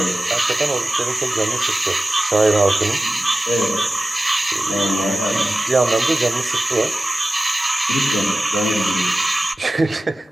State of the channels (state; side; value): normal; both; correlation 0.96